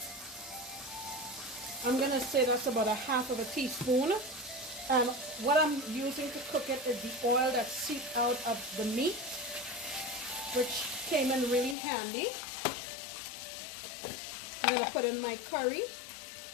I'm going to say that's about 1/2 teaspoon. And what I'm using to cook it is the oil that seeped out of the meat, which came in really handy. I'm going to put in my curry.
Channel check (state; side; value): drops out; right; at 11.8 s